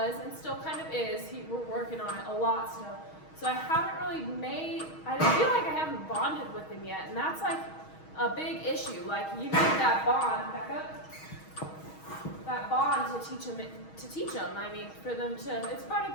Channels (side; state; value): right; late; 6.3 ms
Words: and still kind of is. We're working on it a lot still. So I haven't really I feel like I haven't bonded with him yet, and that's like a big issue. Like you need that bond, back up, that bond to teach him. I mean, for them to, it's part